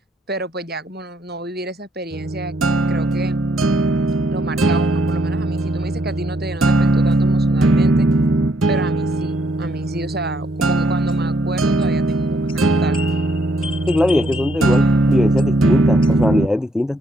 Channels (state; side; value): normal; both; correlation 0.72